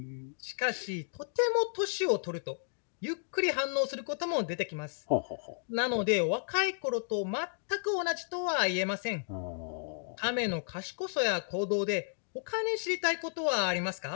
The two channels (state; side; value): silent; right; digital silence